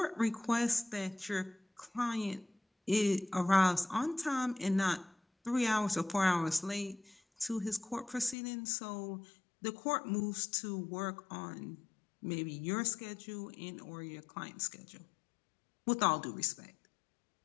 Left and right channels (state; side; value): drops out; right; at 8.3 s